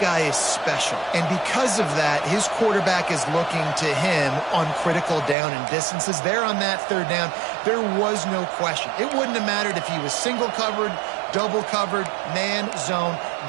guy is special, and because of that, his quarterback is looking to him on critical down and distances. There on that third down, there was no question. It wouldn't have mattered if he was single covered, double covered, man, zone.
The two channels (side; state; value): left; drops out; at 5.4 s